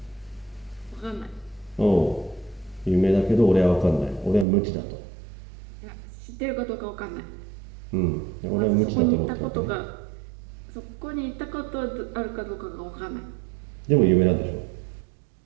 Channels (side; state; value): left; drops out; at 4.5 s